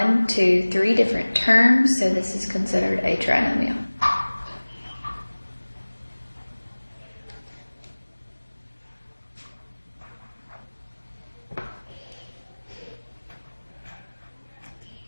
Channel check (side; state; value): both; inverted; correlation -1.00